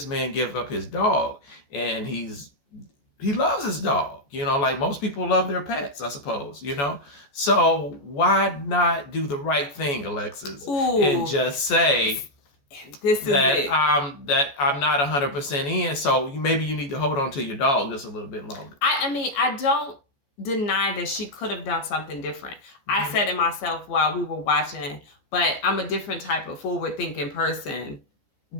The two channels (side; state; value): right; late; 14 ms